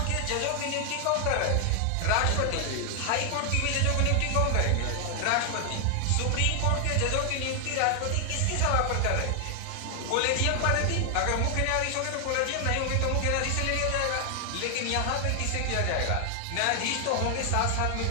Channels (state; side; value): different; both; correlation 0.00